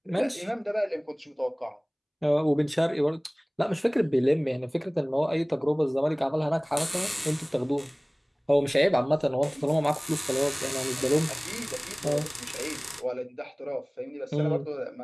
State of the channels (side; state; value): both; identical; correlation 1.00